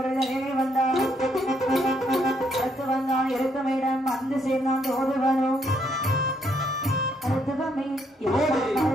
நிலையிலே வந்தான். அடுத்து வந்தான் இருக்கமிடம் வந்து சேர்ந்தான் தோதுவனும். மருத்துவமே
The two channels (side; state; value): both; normal; correlation 0.72